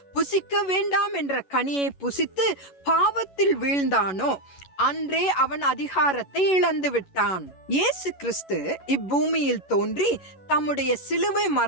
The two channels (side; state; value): right; late; 11 ms